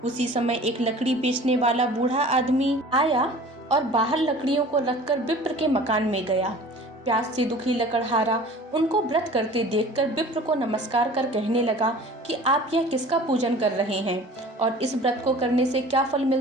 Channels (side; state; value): both; normal; correlation 0.44